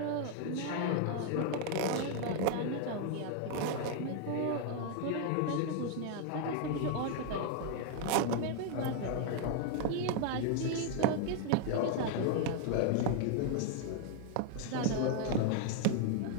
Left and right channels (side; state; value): both; different; correlation 0.00